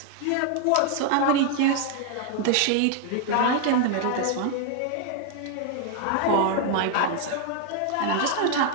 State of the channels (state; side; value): different; both; correlation 0.00